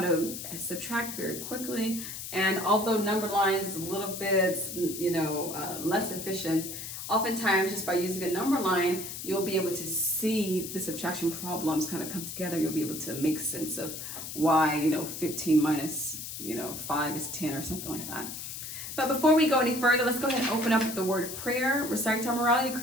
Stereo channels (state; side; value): noise; left; hiss, 8 dB below the sound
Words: subtract very quickly, and although number lines is a little bit, less efficient, oftentimes just by using a number line, you'll be able to see the subtraction problems kind of come together. You'll be able to make sense of why, 15 minus 5 is 10 or something like that. But before we go any further, let's go ahead and open up with the word of prayer, recite our morality